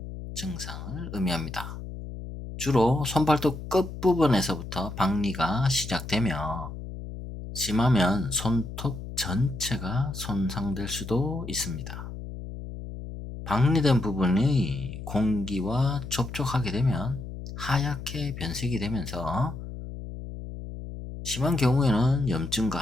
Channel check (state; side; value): noise; left; hum, 10 dB below the sound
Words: 증상을 의미합니다. 주로 손발톱 끝부분에서부터 박리가 시작되며 심하면 손톱 전체가 손상될 수도 있습니다. 박리된 부분이 공기와 접촉하게 되면 하얗게 변색이 되면서 심한 경우에는